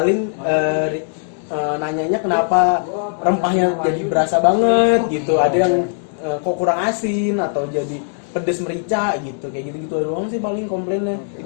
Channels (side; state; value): right; silent; digital silence